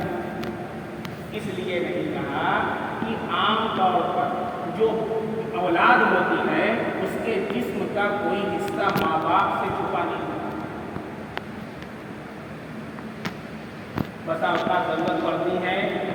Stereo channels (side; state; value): both; identical; correlation 1.00